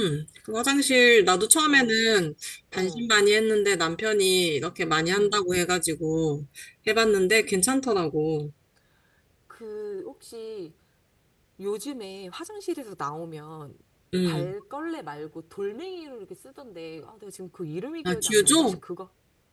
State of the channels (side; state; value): both; identical; correlation 1.00